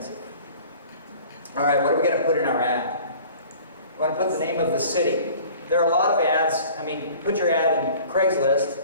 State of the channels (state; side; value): inverted; both; correlation -0.47